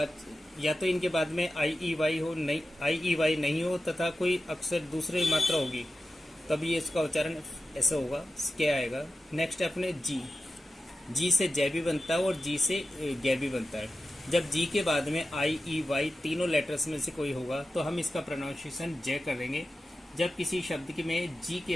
या तो इनके बाद में आई, ई, वाई हो, नहीं आई, ई, वाई नहीं हो तथा कोई अक्षर दूसरे मात्रा होगी तब ये इसका उच्चारण ऐसा होगा, क्या आएगा। नेक्स्ट अपने जी से जय भी बनता है और जी से गे भी बनता है। जब जी के बाद में आई, ई, वाई तीनों लेटर्स में से कोई होगा तो हम इसका प्रोनाउंसिएशन जय करेंगे। जब किसी शब्द में जी के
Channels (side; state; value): both; normal; correlation 0.93